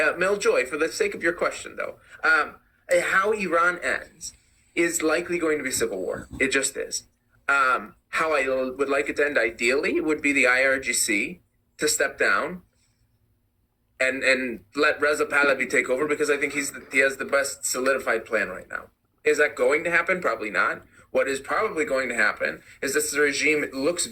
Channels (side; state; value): both; identical; correlation 1.00